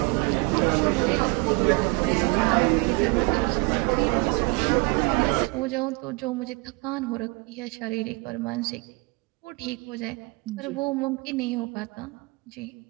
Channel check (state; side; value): quieter; left; 28.0 dB